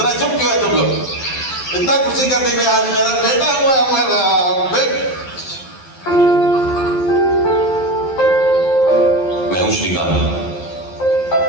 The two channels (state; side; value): late; right; 12 ms